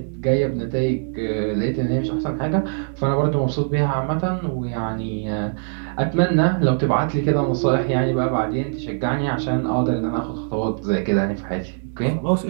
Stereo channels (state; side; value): silent; left; digital silence